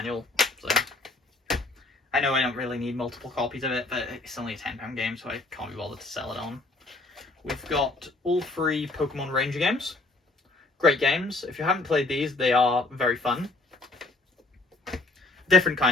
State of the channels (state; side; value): quieter; right; 3.1 dB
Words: so... I know I don't really need multiple copies of it, but it's only a £10 game, so I can't be bothered to sell it on. We've got all 3 Pokemon Ranger games. Great games. If you haven't played these, they are very fun. Different